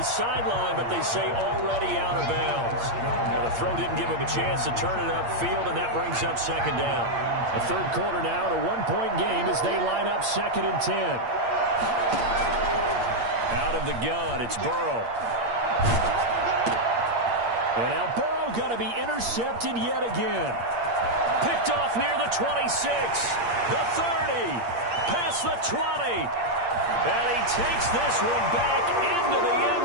sideline, but they say already out of bounds. Well, the throw didn't give him a chance to turn it upfield, and that brings up 2nd down. The 3rd quarter now, a 1-point game as they line up 2nd and 10. Out of the gun, it's Burrow. And now Burrow going to be intercepted yet again. Picked off near the 26, the 30, past the 20. And he takes this one back into the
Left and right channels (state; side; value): late; left; 8.6 ms